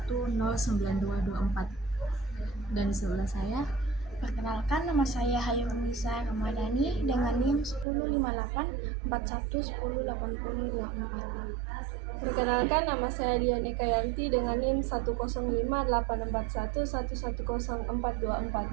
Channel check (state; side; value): drops out; left; at 7.9 s